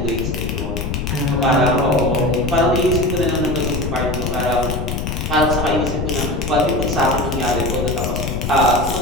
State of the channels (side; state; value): left; noise; rumble, 3 dB below the sound